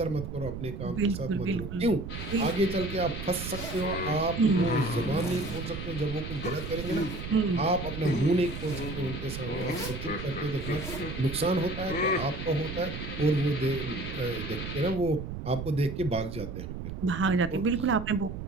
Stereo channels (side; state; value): right; noise; rumble, 7 dB below the sound